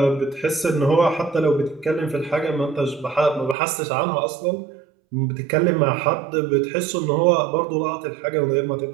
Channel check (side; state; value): left; drops out; at 3.6 s